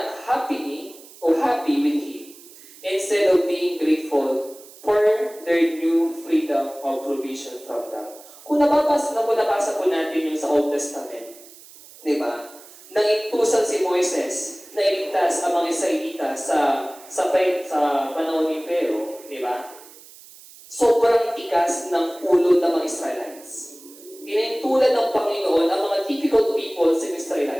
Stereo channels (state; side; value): noise; right; hiss, 21 dB below the sound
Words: happy with him, instead of being grateful for their new freedom of provision from God. Kung nabasa po natin yung sa Old Testament, di ba? Nangintusan si Moises na iligtas ang mga Israelita sa panahon ni Pero, di ba? Sobrang tigas ng ulo ng mga Israelites. Inintulan ng Panginoon ang mga difficult people sa